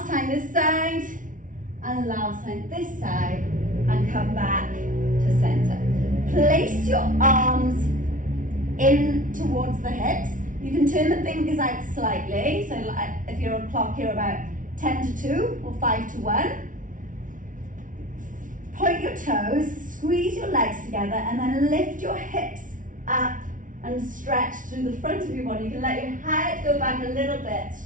time this side and last time this side, and come back to center. Place your arms in towards the hips. You can turn the fingers out slightly. So if you're on clock, you're about 10 to 2 or 5 to 1. Point your toes, squeeze your legs together, and then lift your hips up and stretch through the front of your body. You can let your head go back a little bit,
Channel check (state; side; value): late; left; 0.38 ms